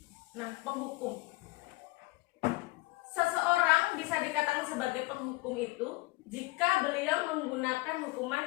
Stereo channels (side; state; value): right; quieter; 23.0 dB